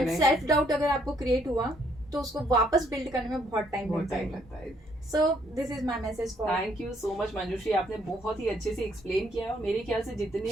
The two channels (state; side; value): normal; both; correlation 0.68